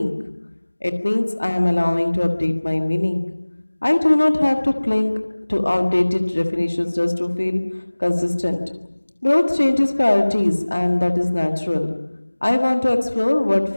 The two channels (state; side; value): inverted; both; correlation -1.00